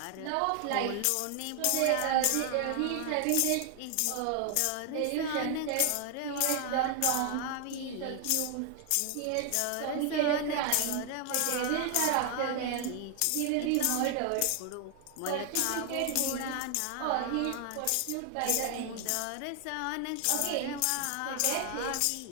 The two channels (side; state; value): both; different; correlation 0.00